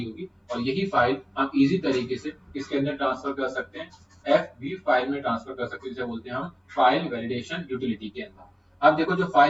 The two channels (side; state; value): both; identical; correlation 1.00